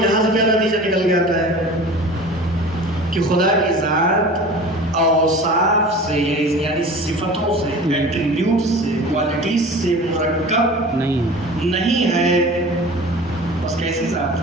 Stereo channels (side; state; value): both; normal; correlation 0.39